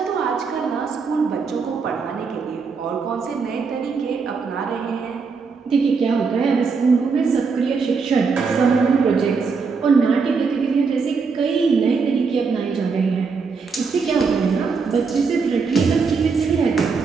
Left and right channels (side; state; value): left; quieter; 5.1 dB